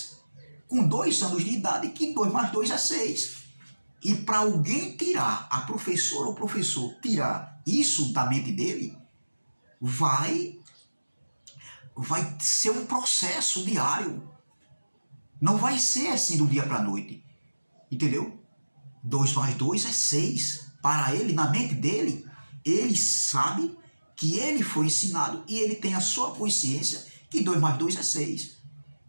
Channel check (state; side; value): inverted; both; correlation -1.00